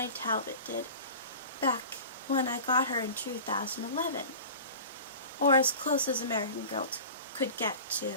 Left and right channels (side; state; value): both; inverted; correlation -0.37